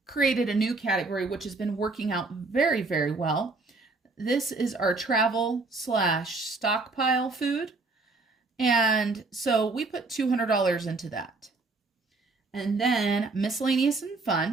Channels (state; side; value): quieter; left; 3.6 dB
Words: created a new category, which has been working out very, very well. This is our travel / stockpile food. And so we put $200 into that. And then miscellaneous and